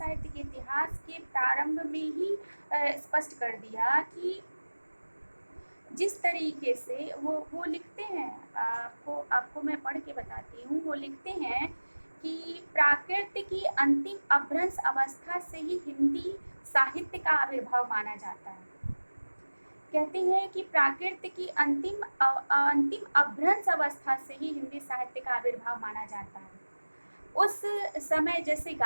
के इतिहास के प्रारंभ में ही स्पष्ट कर दिया कि जिस तरीके से वो लिखते हैं, आपको मैं पढ़ के बताती हूँ। वो लिखते हैं कि प्राकृत की अंतिम अपभ्रंश अवस्था से ही हिंदी साहित्य का आविर्भाव माना जाता है। कहते हैं कि प्राकृत की अंतिम अपभ्रंश अवस्था से ही हिंदी साहित्य का आविर्भाव माना जाता है। उस समय जैसे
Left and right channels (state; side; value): inverted; both; correlation -1.00